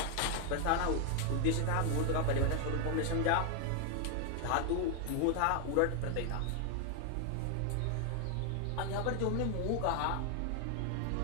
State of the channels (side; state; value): both; different; correlation 0.00